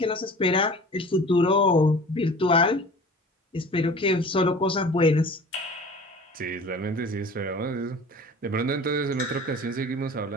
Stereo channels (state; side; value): normal; both; correlation 0.42